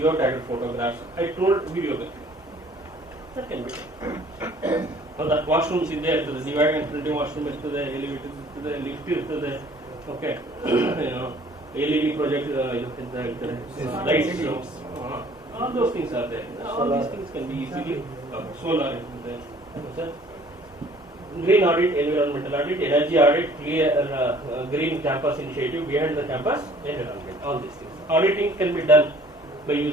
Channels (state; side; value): normal; both; correlation 0.55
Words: photographs. I told video that can be done. ಹೌದಾ, washrooms ಇದ್ದೇ ಇರ್ತದೆ, divide and printing washroom ಇರ್ತದೆ, elevator ಇರ್ತದೆ, lift ಇರ್ತದೆ, okay, LED project ಅಂತ ಹೇಳ್ತಾರೆ, lights, all those things are there. All these things can be easily solar ಇರ್ತದೆ, green audit, environmental audit, energy audit, clear green campus initiative behind the campus environment, all these things. Auditing can be done by